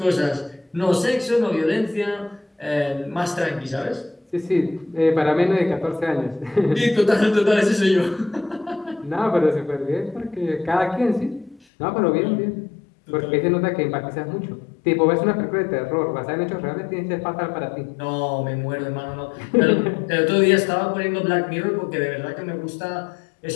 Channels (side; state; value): right; drops out; at 11.6 s